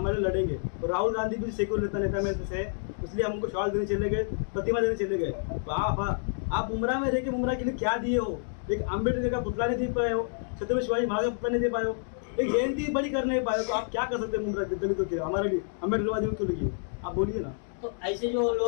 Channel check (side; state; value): right; silent; digital silence